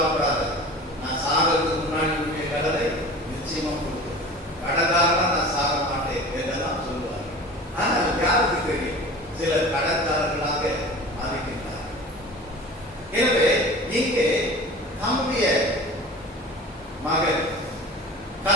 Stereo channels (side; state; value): both; normal; correlation 0.38